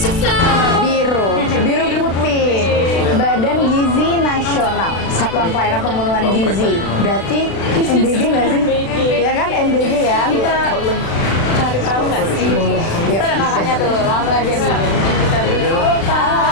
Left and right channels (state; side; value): late; right; 36 ms